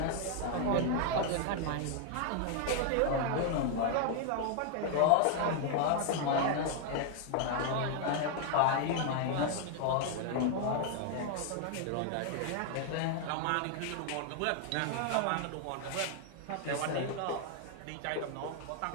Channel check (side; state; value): both; different; correlation 0.00